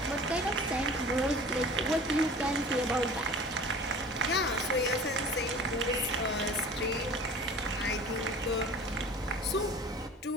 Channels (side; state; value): both; normal; correlation 0.43